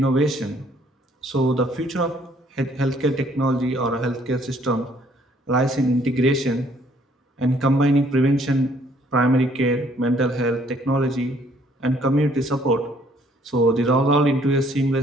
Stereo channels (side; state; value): both; normal; correlation 0.63